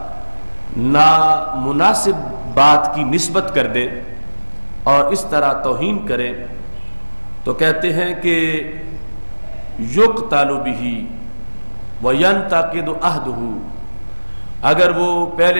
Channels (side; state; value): both; inverted; correlation -1.00